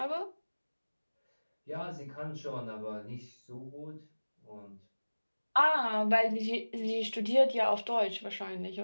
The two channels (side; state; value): both; inverted; correlation -1.00